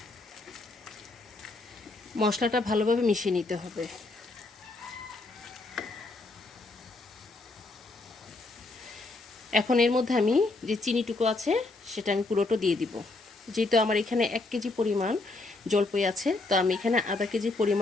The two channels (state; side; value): quieter; right; 3.2 dB